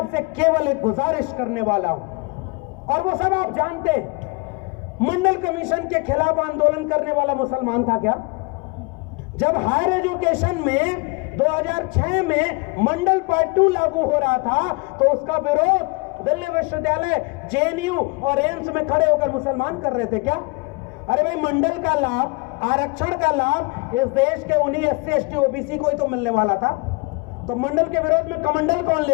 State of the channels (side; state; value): right; quieter; 28.6 dB